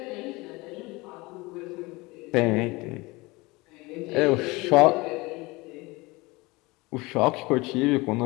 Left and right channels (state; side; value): quieter; right; 23.3 dB